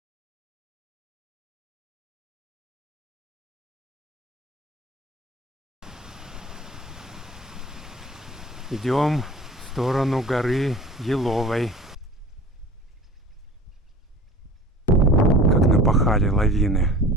Идем в сторону горы Еловой. Как напахали лавины,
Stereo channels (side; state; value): both; normal; correlation 0.41